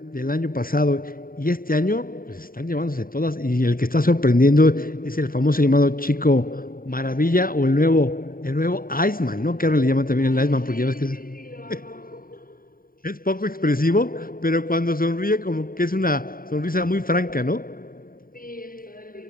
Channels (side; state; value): right; late; 0.41 ms